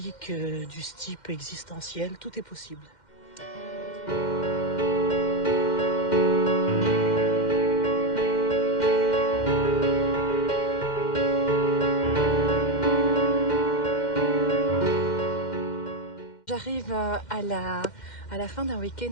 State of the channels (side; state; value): right; late; 2.1 ms